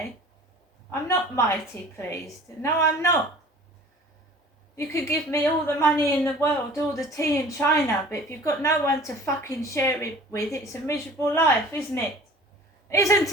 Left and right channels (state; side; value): normal; both; correlation 0.46